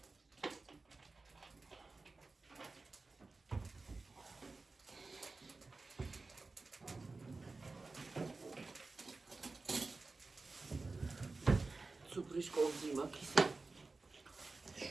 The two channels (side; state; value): left; quieter; 3.7 dB